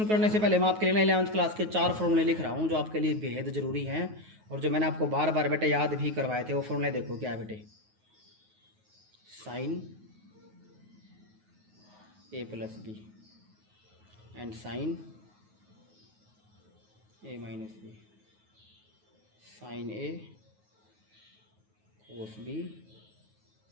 करने से पहले मैं आपके लिए ना 11th क्लास के 4 फॉर्मूले लिख रहा हूँ जो आपके लिए बेहद ज़रूरी हैं और जो मैंने आपको बार बार बेटे याद भी करवाए थे। वो फॉर्मूले देखो क्या है बेटे, sine A plus B and sine A minus B, sine A cos B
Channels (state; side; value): late; left; 9.4 ms